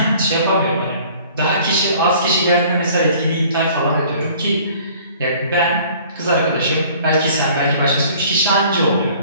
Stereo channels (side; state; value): both; inverted; correlation -0.52